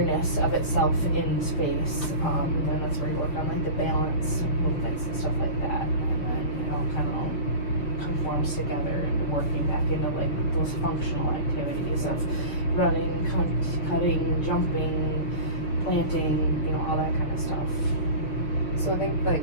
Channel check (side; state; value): right; late; 6.7 ms